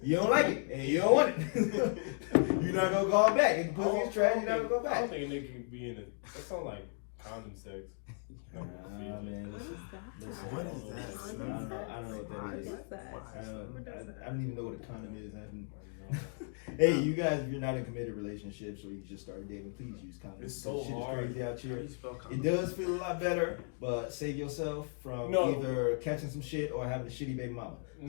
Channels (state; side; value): silent; right; 54 dB below the other